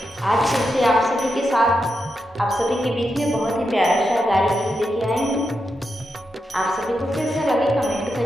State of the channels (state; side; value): normal; both; correlation 0.86